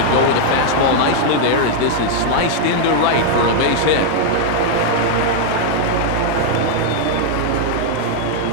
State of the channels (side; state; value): both; different; correlation 0.00